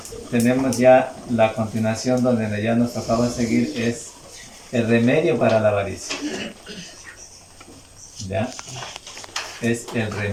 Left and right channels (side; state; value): both; identical; correlation 1.00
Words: tenemos ya la continuación donde ya nos tocaba seguir, es el remedio para la avaricia. ¿Ya? Es el